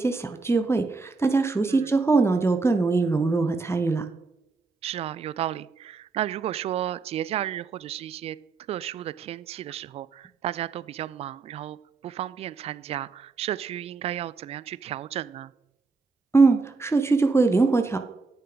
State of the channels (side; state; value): left; quieter; 4.1 dB